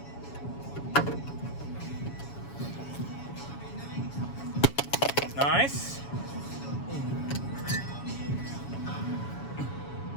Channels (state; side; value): late; right; 7.1 ms